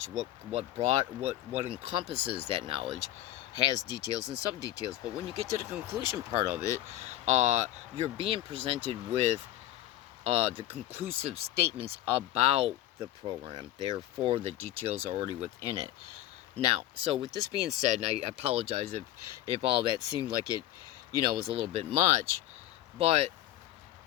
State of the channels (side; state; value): right; quieter; 13.8 dB